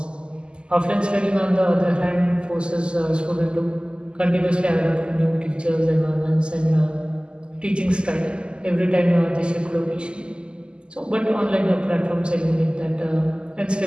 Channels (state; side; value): late; left; 0.049 ms